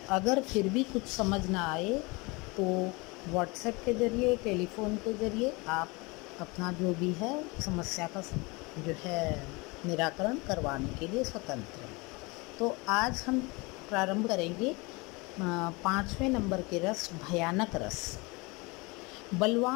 अगर फिर भी कुछ समझ ना आए तो व्हाट्सएप के ज़रिए, टेलीफ़ोन के ज़रिए आप अपना जो भी है समस्या का जो है निराकरण करवाने के लिए स्वतंत्र हैं। तो आज हम प्रारंभ करेंगे 5वें नंबर के रस, भयानक रस।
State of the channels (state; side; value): quieter; right; 26.1 dB